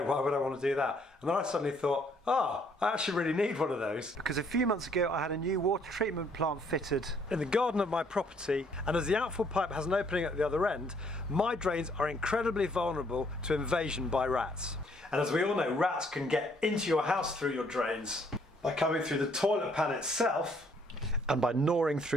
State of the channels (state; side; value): normal; both; correlation 0.66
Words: why would I want to do that? And then I suddenly thought, I actually really need one of those. Because a few months ago I had a new water treatment plant fitted in the garden of my property, and as the outfall pipe has an opening at the other end, my drains are incredibly vulnerable to invasion by rats. And as we all know, rats can get into your house through your drains by coming through the toilet pan itself, and by gnawing